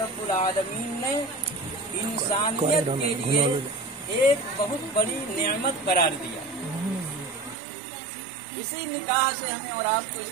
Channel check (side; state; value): left; drops out; at 7.6 s